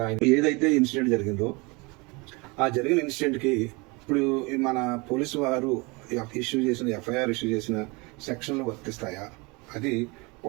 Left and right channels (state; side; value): quieter; left; 27.1 dB